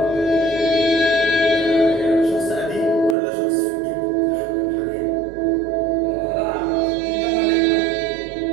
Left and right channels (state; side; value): drops out; left; at 3.2 s